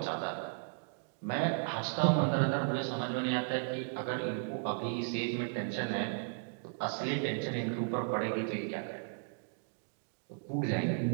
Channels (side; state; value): left; silent; digital silence